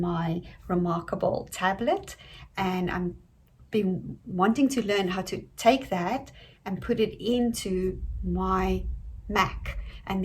Remarkable tablet, and I'm been wanting to learn how to take that and put it into my Mac, and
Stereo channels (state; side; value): identical; both; correlation 1.00